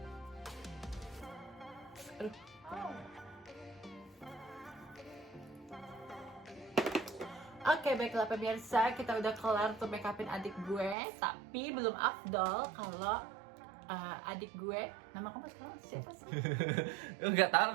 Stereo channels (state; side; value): drops out; left; at 11.0 s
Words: Aduh. Oke, baiklah pemirsa, kita udah kelar tuh make upin adik gue. Tapi belum afdol kalau adik gue, nama kamu sekarang siapa sih? Enggak tahu